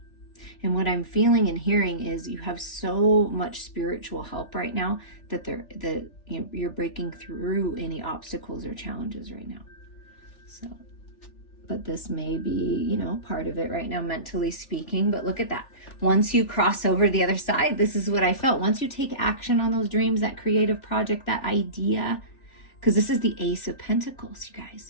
And what I'm feeling and hearing is you have so much spiritual help right now that you're breaking through any obstacles or challenges right now. So, but this may be, part of it right now, mentally speaking. But look at that. Once you cross over to the other side, this is what I felt. Once you take action on those dreams, that creative project, that idea, because this is the Ace of Pentacles, you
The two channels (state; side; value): late; right; 3.4 ms